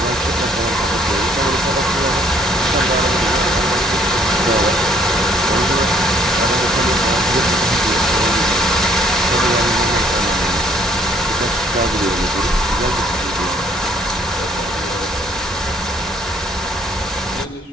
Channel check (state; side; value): normal; both; correlation 0.63